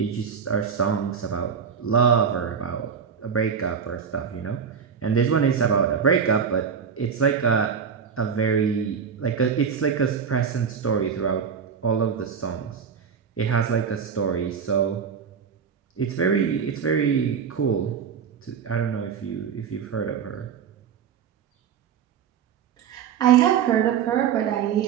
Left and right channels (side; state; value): left; quieter; 7.0 dB